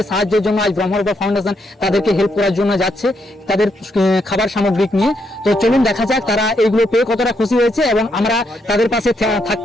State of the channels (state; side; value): normal; both; correlation 0.78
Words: সাহায্যের জন্য আজ ব্রহ্মরূপ ফাউন্ডেশন তাদেরকে হেল্প করার জন্য যাচ্ছে তাদের খাবার সামগ্রিক নিয়ে। তো চলুন দেখা যাক তারা এইগুলো পেয়ে কতটা খুশি হয়েছে, এবং আমরা তাদের পাশে